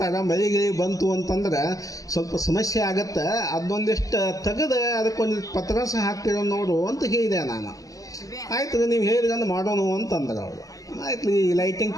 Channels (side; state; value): right; late; 0.17 ms